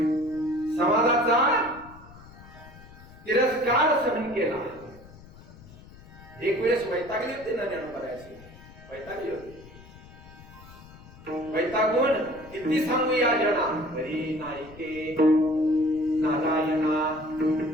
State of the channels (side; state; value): left; noise; rumble, 20 dB below the sound